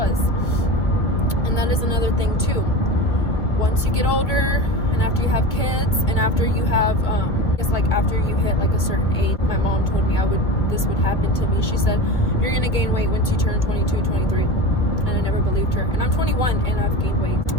And that is another thing too. Once you get older, and after you have kids, and after you have it's like after you hit like a certain age, my mom told me this would happen to me. She said, you're gonna gain weight once you turn 22, 23. And I never believed her. And I'm 21 and I've gained weight.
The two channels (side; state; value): right; late; 1.6 ms